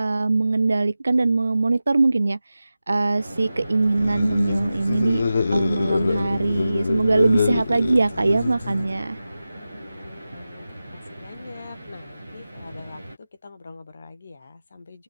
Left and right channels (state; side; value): inverted; both; correlation -0.94